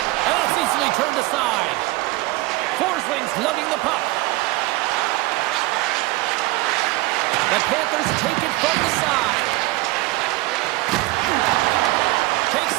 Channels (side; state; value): left; quieter; 20.0 dB